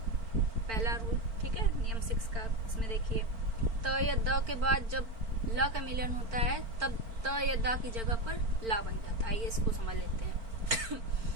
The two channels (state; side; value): late; left; 4.4 ms